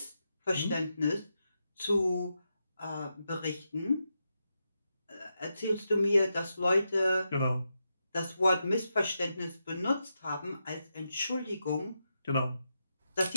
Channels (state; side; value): inverted; both; correlation -0.86